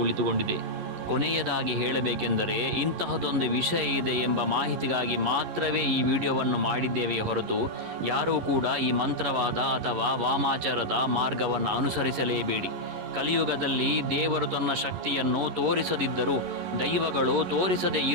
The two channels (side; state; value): left; late; 11 ms